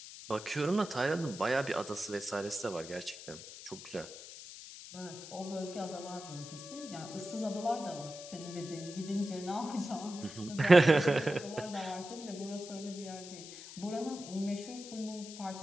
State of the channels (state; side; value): noise; left; hiss, 13 dB below the sound